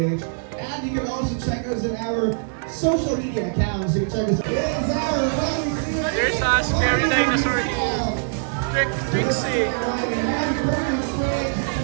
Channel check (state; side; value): silent; left; digital silence